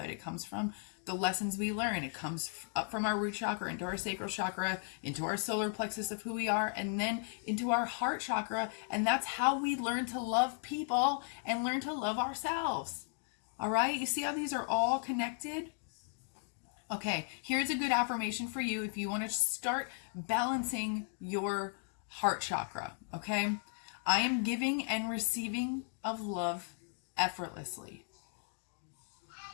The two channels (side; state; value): right; silent; 54 dB below the other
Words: It comes from the lessons we learn. It comes up from our root chakra into our sacral chakra, into our solar plexus of who we are, and then into our heart chakra. And that's how we learn to love people and learn to love ourselves. All right? You see how these are all connected? Okay, here's a good affirmation for you if you want to start balancing your heart chakra, okay? I am giving and receiving of love effortlessly.